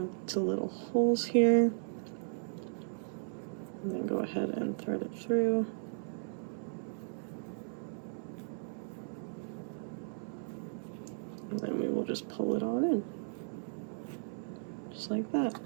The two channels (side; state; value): left; silent; 54 dB below the other